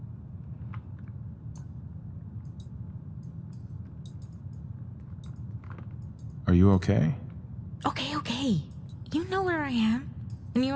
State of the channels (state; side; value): identical; both; correlation 1.00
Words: Are you okay? Okay. You know where I am. And you